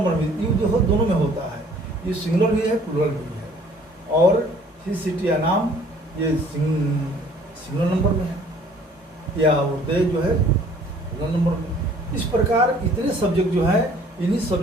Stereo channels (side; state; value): both; normal; correlation 0.55